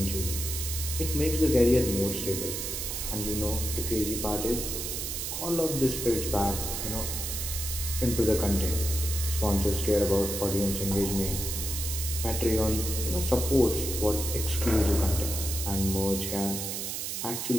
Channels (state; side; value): noise; right; hiss, 4 dB below the sound